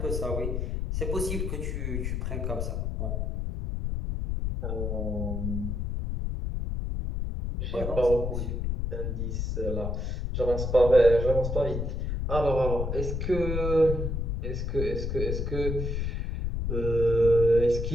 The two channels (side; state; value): left; noise; rumble, 1 dB below the sound